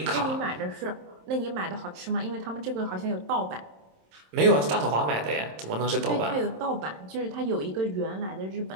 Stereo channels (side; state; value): left; late; 27 ms